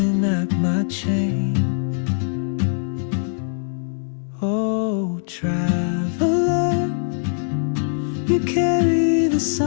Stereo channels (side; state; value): right; silent; digital silence